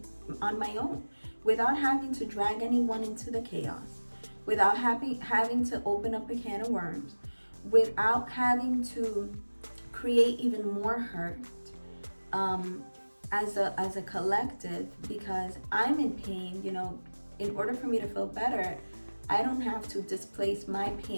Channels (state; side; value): inverted; both; correlation -1.00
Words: on my own, without having to drag anyone into the chaos, without having to open up a can of worms, without having to create even more hurt as a collective, because I'm in pain. in order for me to feel better, I don't have to displace my